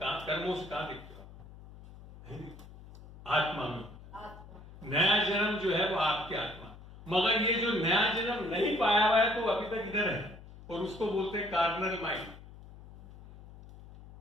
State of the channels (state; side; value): noise; left; hum, 18 dB below the sound